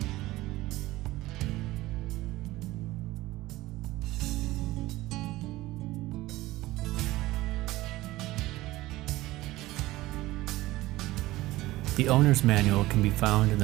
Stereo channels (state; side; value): quieter; left; 17.9 dB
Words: The owner's manual can be found in the